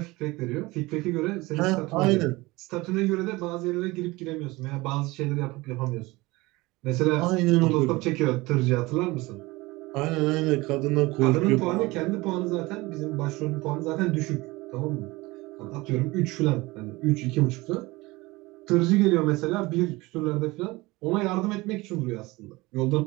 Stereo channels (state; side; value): quieter; left; 21.7 dB